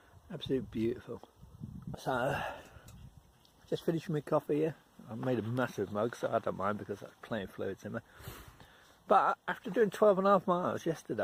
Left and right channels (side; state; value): both; identical; correlation 1.00